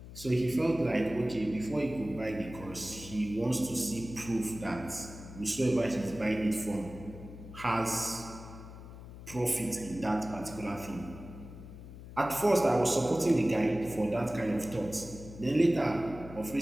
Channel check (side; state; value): left; noise; hum, 14 dB below the sound